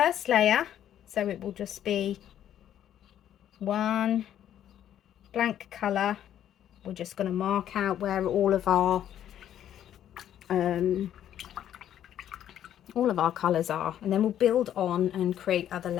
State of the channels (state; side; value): quieter; right; 10.7 dB